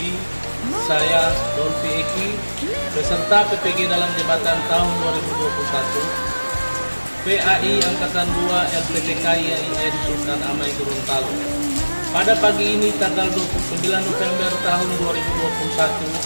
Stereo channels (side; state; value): both; inverted; correlation -1.00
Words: saya Dolfi Eki, peserta PPG dalam jabatan tahun 2021, PAI Angkatan 2 LPTKIAIN Sultan Amai Gorontalo. Pada pagi ini tanggal 29 November tahun